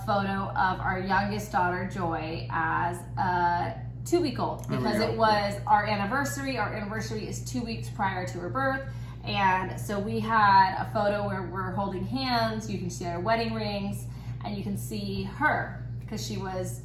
photo of our youngest daughter, Joy, as a 2-week-old because it was our anniversary. Our anniversary is 2 weeks prior to her birth. And so we had a photo where we're holding hands. You can see our wedding rings and you can see her because she was,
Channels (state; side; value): identical; both; correlation 1.00